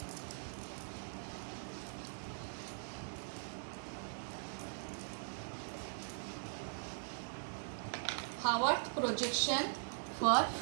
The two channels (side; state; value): left; silent; digital silence